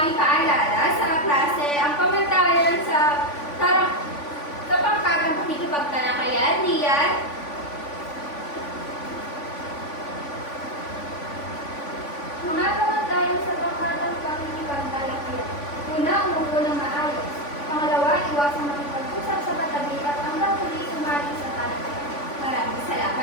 ipaalala sa klase ang komentayan sa pangkatang pakikipagtalakayan, Lian? Mga kamantayan sa pangkatang pakikipagtalakayan. Una, umupo ng maayos. Pangalawa, iwasang makipag-usap sa katabi at hanggang huli sumali sa talakayan. Maraming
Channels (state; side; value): late; right; 3.5 ms